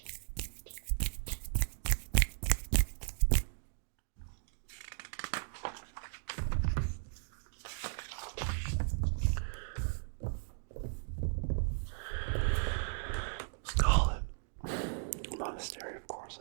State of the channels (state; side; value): silent; left; digital silence